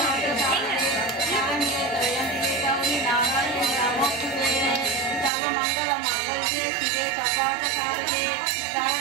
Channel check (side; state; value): left; drops out; at 5.3 s